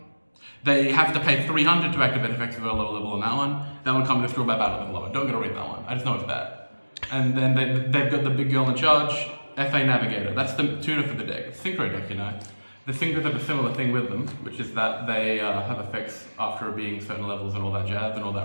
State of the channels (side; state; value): both; inverted; correlation -1.00